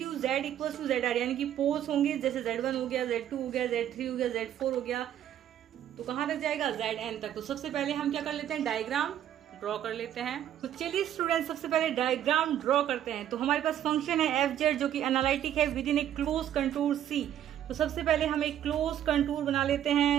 z equals to Z R, यानी कि पोल्स होंगे जैसे z1 हो गया, z2 हो गया, z3 हो गया, z4 हो गया, तो कहां तक जाएगा, zn तक। तो सबसे पहले हम क्या कर लेते हैं, डायग्राम ड्रॉ कर लेते हैं। तो चलिए स्टूडेंट, सबसे पहले डायग्राम ड्रॉ करते हैं। तो हमारे पास फंक्शन है एफ जेड जो कि एनालिटिक है with in a closed contour C. तो सबसे पहले हम एक क्लोज कंटूर बना लेते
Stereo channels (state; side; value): quieter; left; 10.9 dB